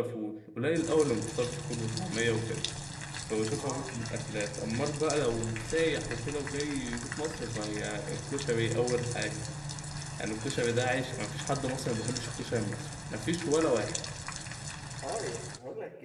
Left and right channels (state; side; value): identical; both; correlation 1.00